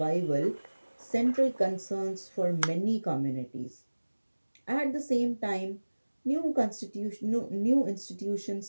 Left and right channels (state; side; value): inverted; both; correlation -1.00